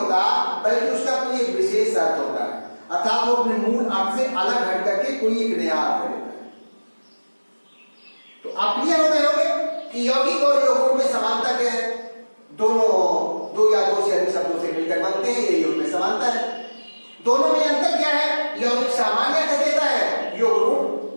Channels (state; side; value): inverted; both; correlation -1.00